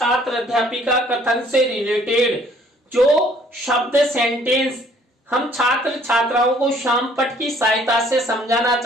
कथन से रिलेटेड जो शब्द, सेंटेंस हम छात्र छात्राओं को शामपट की सहायता से समझाना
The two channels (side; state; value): both; normal; correlation 0.60